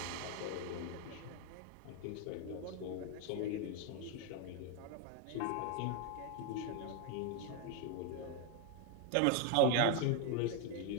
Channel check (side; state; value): both; different; correlation 0.01